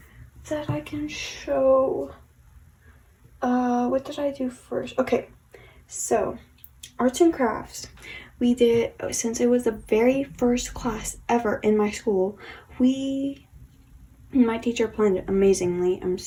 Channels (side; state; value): both; identical; correlation 1.00